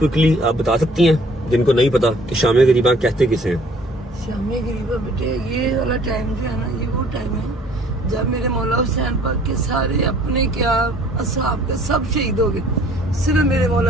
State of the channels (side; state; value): both; normal; correlation 0.56